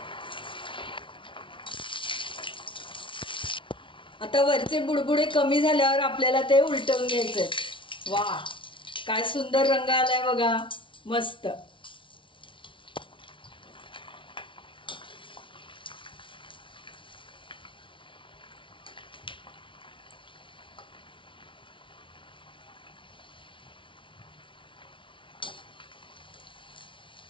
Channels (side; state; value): right; late; 0.25 ms